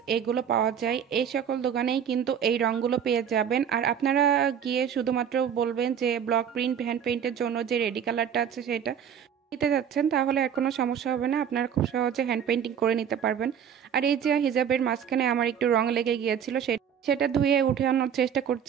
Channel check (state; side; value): quieter; left; 8.4 dB